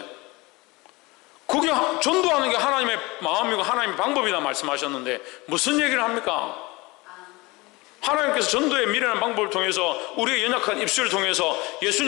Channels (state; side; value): quieter; right; 23.4 dB